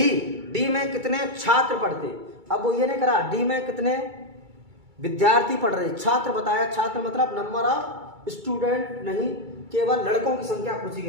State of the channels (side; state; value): left; late; 2.3 ms